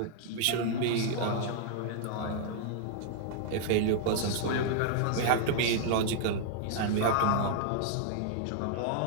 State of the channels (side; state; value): both; different; correlation -0.01